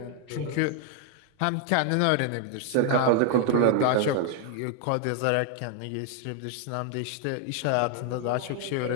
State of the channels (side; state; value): both; different; correlation 0.00